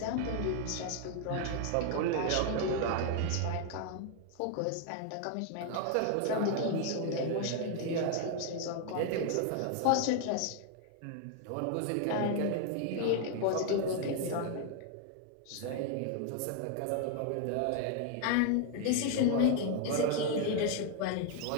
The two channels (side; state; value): both; different; correlation 0.00